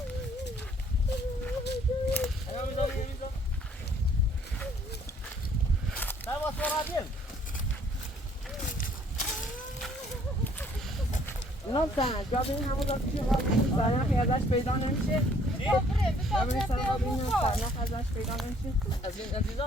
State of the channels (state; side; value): normal; both; correlation 0.61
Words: الان میذارم سرباز برادر نه سن جا ببین همون داره پیش خواهد سرنخی ازش پیدا نمیشه ببین سرنخ ازش پیدا نمیشه از این عزیزا